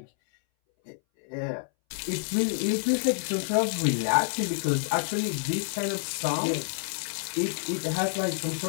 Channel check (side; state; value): right; silent; 59 dB below the other